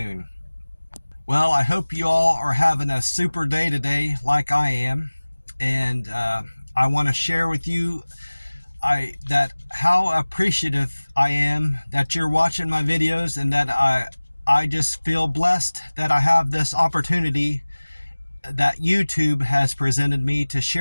Well, I hope you all are having a super day today like I am. And I want to share with you how appreciative I am that you're watching my videos, and that I just feel blessed that I have this opportunity that YouTube has presented me to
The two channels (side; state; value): both; inverted; correlation -1.00